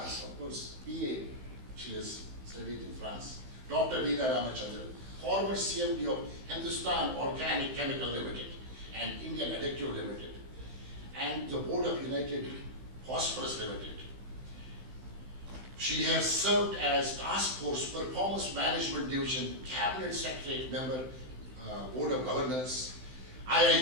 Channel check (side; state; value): left; late; 16 ms